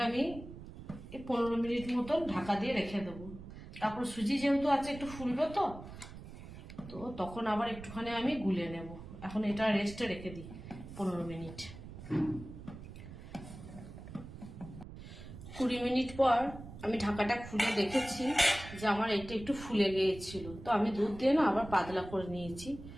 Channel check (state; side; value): noise; right; rumble, 13 dB below the sound